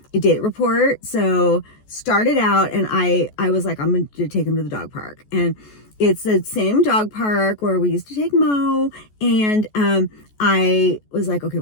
A date report. So started out, and I was like, I'm going to take him to the dog park. And it's the same dog park where we used to take Mo. And I was like, okay,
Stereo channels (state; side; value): late; right; 14 ms